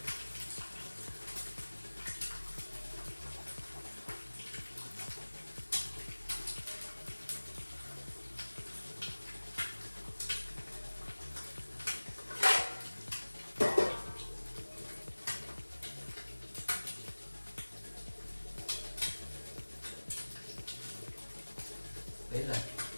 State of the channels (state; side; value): inverted; both; correlation -1.00